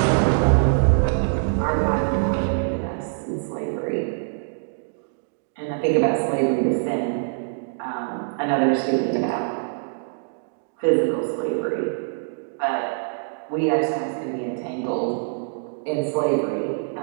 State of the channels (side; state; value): left; silent; digital silence